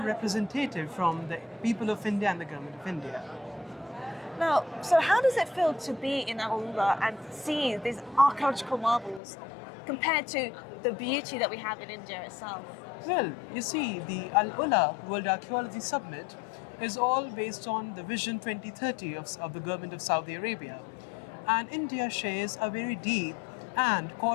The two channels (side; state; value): right; drops out; at 9.2 s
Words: representative from the people of India and the government of India. Now, so how does it feel to be in AlUla and see these archaeological marvels compared to the beauty that we have in India itself? Well, you see, the AlUla World Archaeology Summit is all based on the Vision 2030 of the government of Saudi Arabia. And India shares a very deep and